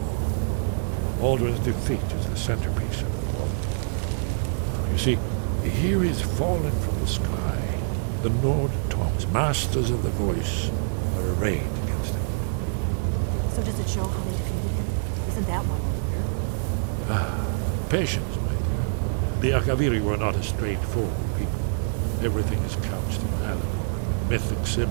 Alduin's defeat is the centerpiece of the war. You see, here is fallen from the sky. The Nord tongues, masters of the voice, are arrayed against him. So does it show how they defeated him? Isn't that why we're here? Patience, my dear. The Akaviri were not a straightforward people. Everything is couched in allegory and mythic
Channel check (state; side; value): silent; left; 61 dB below the other